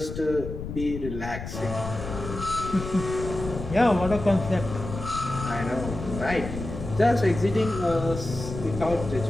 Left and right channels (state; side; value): noise; left; rumble, 8 dB below the sound